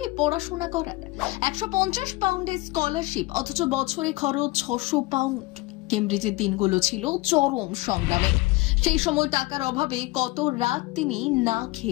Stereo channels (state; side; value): quieter; right; 21.2 dB